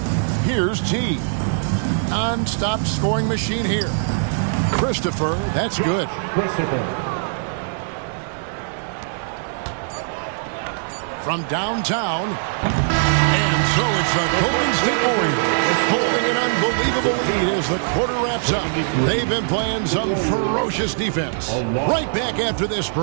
Here's T. Non-stop scoring machine here. Christopher, that's good. From downtown. And so it's the Golden State Warriors holding an unbelievable lead as the quarter wraps up. They've been playing some ferocious defense. Right back after this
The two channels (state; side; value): silent; left; digital silence